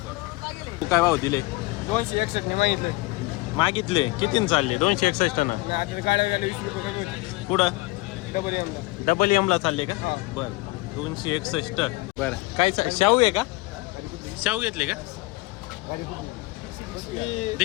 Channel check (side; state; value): right; quieter; 22.3 dB